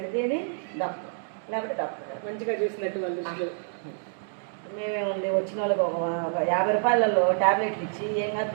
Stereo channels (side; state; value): left; silent; digital silence